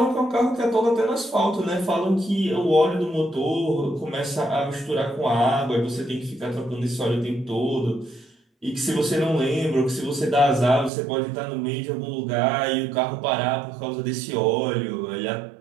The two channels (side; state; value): left; drops out; at 10.9 s